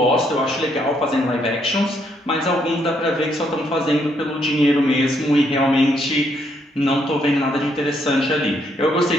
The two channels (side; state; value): both; normal; correlation 0.73